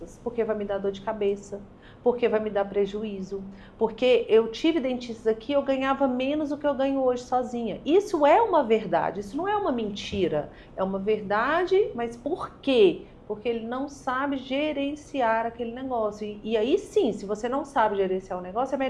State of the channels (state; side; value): identical; both; correlation 1.00